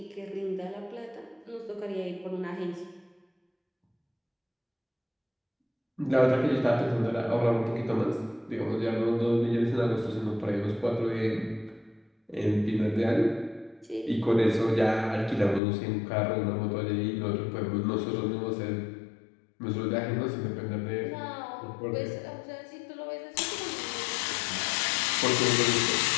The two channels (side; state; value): right; drops out; at 15.6 s